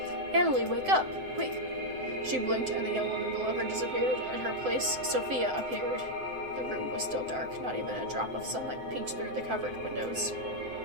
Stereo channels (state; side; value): late; left; 7.8 ms